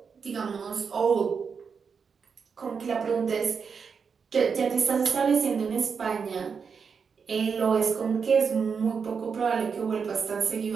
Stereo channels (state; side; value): quieter; left; 6.0 dB